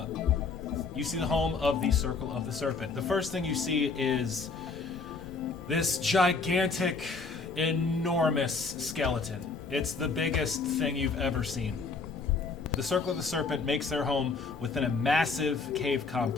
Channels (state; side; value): quieter; right; 4.4 dB